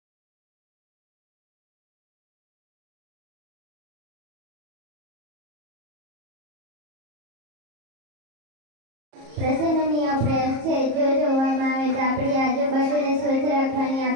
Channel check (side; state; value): left; late; 34 ms